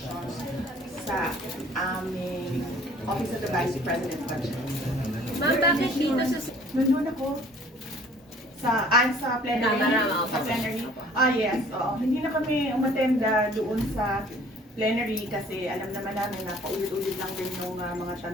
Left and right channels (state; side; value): normal; both; correlation 0.53